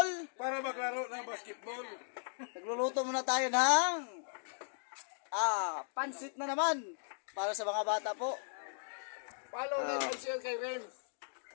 para maglaro ng basketball. Nagluluto muna tayo ng pansit na naman para sa mga bata po. Follow like and share kay Renz.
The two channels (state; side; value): silent; right; digital silence